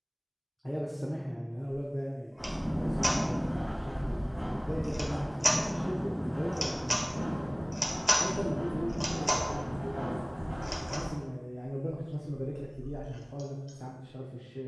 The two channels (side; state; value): both; identical; correlation 1.00